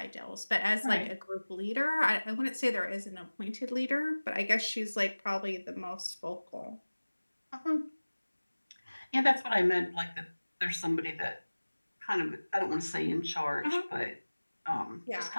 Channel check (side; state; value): both; inverted; correlation -1.00